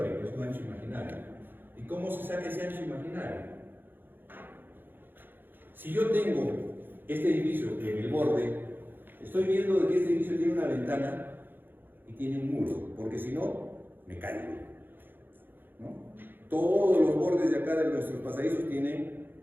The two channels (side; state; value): left; late; 0.097 ms